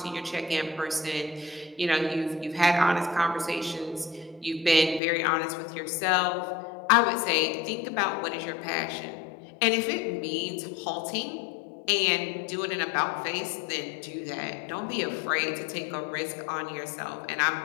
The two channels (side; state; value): right; drops out; at 5.0 s